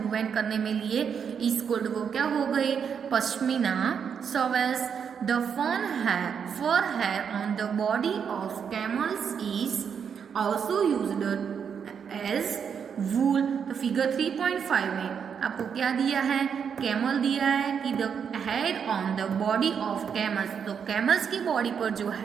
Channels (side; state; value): left; quieter; 7.1 dB